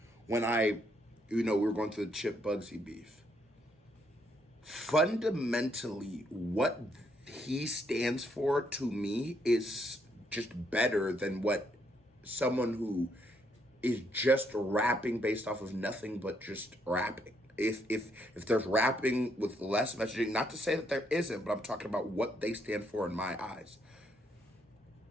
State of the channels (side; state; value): both; normal; correlation 0.73